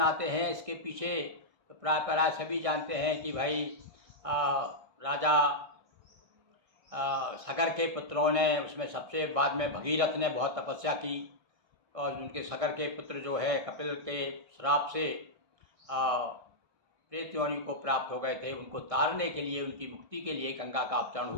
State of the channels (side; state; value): left; late; 1.6 ms